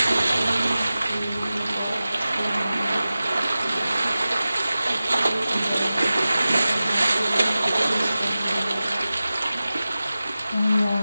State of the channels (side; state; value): both; inverted; correlation -0.95